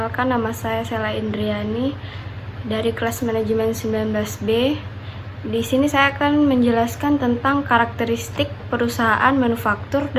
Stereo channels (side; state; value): both; identical; correlation 1.00